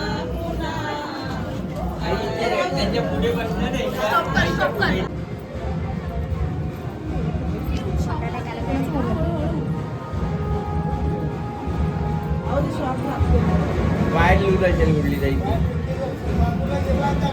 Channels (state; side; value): identical; both; correlation 1.00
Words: आई इथे त्यांच्या पुढे बसणार आहे बाहेर येऊ असेल कुठली जाईल